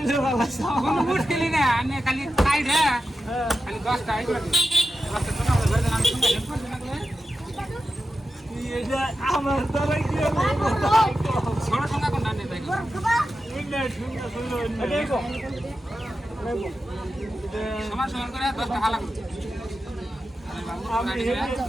ভালো কোনো মুশকিলই না, আমি খালি খাই রে, খালি 10টা এই করে দিই। 10টা সঙ্গে আমাদের ঘরে আমি সঙ্গে হেল্প করছি না করে। এটা আমার দ্বারা কি ছোট সঙ্গে কোনটা নেই তাই সমান সমান করে 10টা ভালো করে।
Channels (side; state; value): both; normal; correlation 0.91